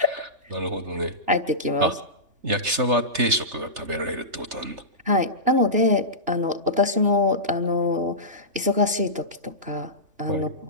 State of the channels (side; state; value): left; late; 3.4 ms